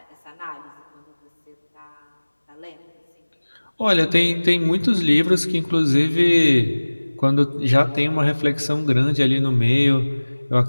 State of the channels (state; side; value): inverted; both; correlation -1.00